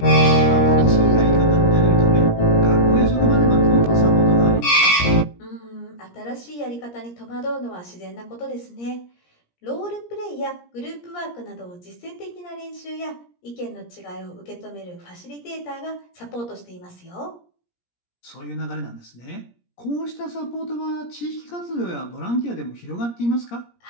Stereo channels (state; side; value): late; right; 17 ms